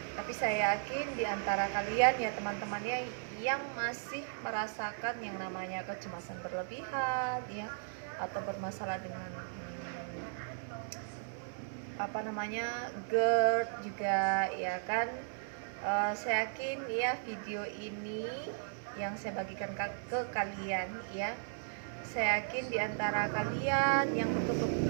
Tapi saya yakin di antara kalian ya teman-temannya yang masih merasakan yang namanya kecemasan berlebihan ya, atau bermasalah dengan GERD juga ya kan. Saya yakin ya video ini yang saya bagikan ke kalian ya, saya yakin di antara kalian yang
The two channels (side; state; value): left; silent; 54 dB below the other